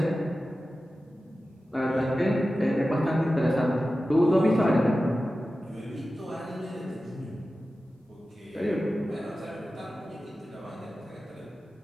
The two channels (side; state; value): both; normal; correlation 0.94